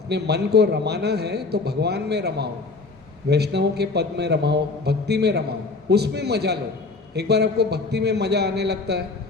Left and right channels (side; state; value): right; quieter; 3.8 dB